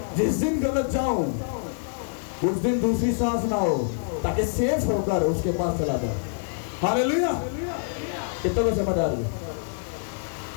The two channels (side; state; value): right; silent; 61 dB below the other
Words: जिस दिन गलत जाऊं उस दिन दूसरी सांस ना हो, ताकि सेफ होकर उसके पास चला जाए। हालेलुया। कितने को समझ आ रही है?